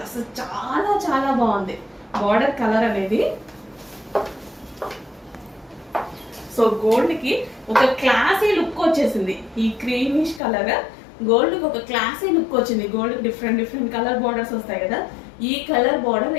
అసలు చాలా చాలా బాగుంది. బార్డర్ కలర్ అనేది సో గోల్డ్ కి ఒక క్లాసీ లుక్ వచ్చేసింది. ఈ క్రీమిష్ కలర్ గోల్డ్ కి ఒక క్లాసీ లుక్ వచ్చింది. గోల్డ్ కి డిఫరెంట్ డిఫరెంట్ కలర్ బార్డర్స్ వస్తాయి కదా, ఈ కలర్ బార్డర్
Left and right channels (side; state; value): right; drops out; at 10.4 s